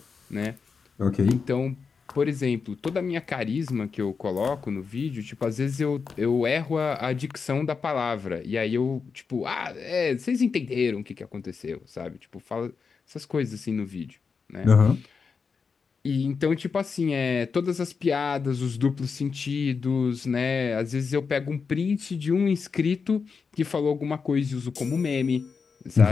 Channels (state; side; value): quieter; right; 5.4 dB